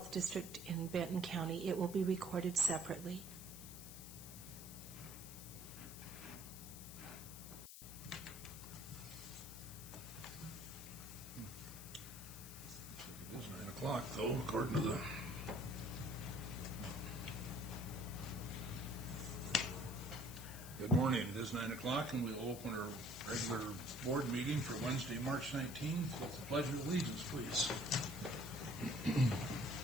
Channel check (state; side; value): noise; left; hiss, 12 dB below the sound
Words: District in Benton County. It will be recorded separately. It is 9 o'clock, though, according to the... Good morning. It is 9 o'clock, and we'll open our regular board meeting for Wednesday, March 19th with the Pledge of Allegiance, please.